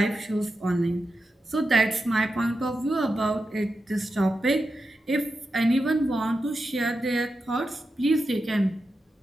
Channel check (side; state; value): both; normal; correlation 0.89